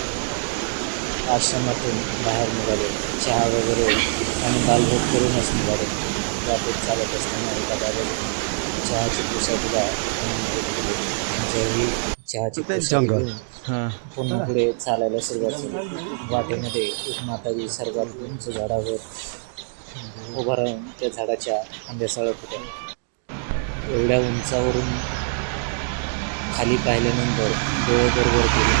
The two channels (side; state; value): left; silent; digital silence